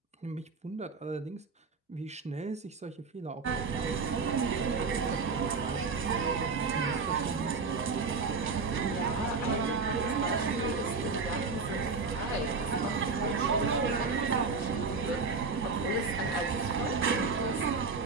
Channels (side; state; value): left; quieter; 4.5 dB